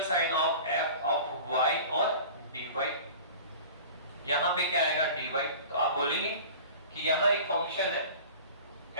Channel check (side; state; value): both; inverted; correlation -0.40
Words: sine of f of y और dy। यहां पे क्या आएगा? dy। तो आप बोलेंगे कि यहां एक फंक्शन है